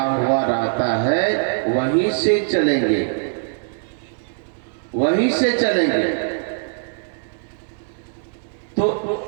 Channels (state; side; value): silent; left; digital silence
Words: हुआ रहता है, वहीं से चलेंगे, वहीं से चलेंगे। तो